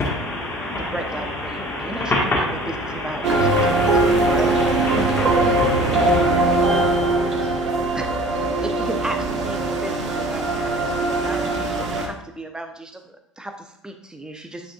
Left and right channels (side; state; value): both; normal; correlation 0.47